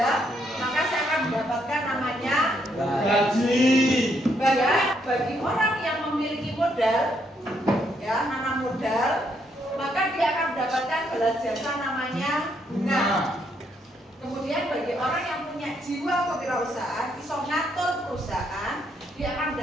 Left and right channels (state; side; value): normal; both; correlation 0.74